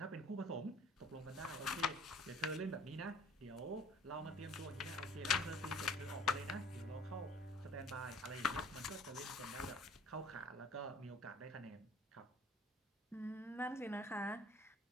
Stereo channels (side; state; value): both; normal; correlation 0.53